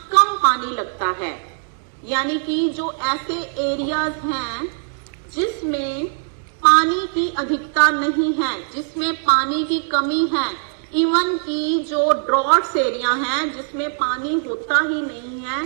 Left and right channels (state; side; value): silent; left; 60 dB below the other